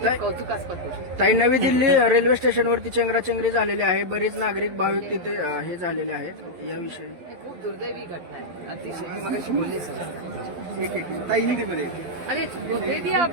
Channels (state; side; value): late; left; 12 ms